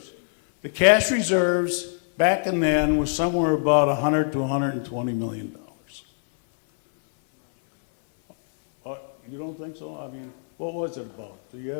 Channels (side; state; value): right; silent; 60 dB below the other